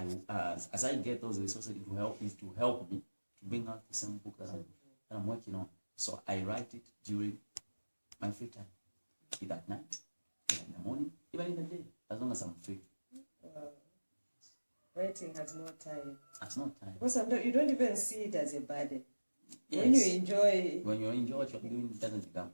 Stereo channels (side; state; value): both; inverted; correlation -1.00